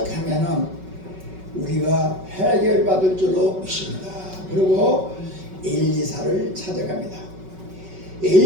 우리가 해결받을 줄로 믿습니다. 그리고 엘리사를 찾아갑니다.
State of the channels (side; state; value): left; late; 5.3 ms